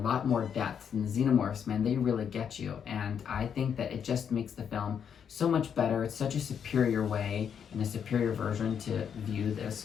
more depth. And the xenomorphs, man, they really get you. And I think that it just makes the film so much better. It's such a superior way and a superior version to view this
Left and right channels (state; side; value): quieter; right; 7.8 dB